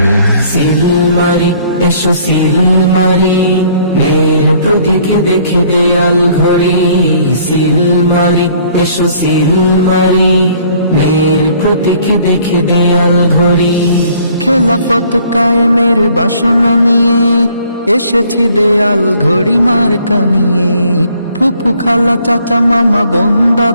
মারি এসো সিল মারি মেয়ের প্রতীক দেখে দেয়াল ঘড়ি। সিল মারি এসো সিল মারি মেয়ের প্রতীক দেখে দেয়াল ঘড়ি। খেলাফত কায়েমের বাসনা নিয়ে এসেছি দেয়াল ঘড়ি মার্কা নিয়ে। ফুফু খালা চাচা মামা বোন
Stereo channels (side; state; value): both; inverted; correlation -0.59